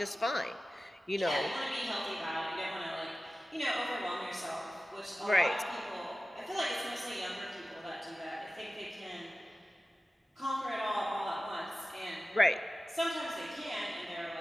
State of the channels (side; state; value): both; normal; correlation 0.95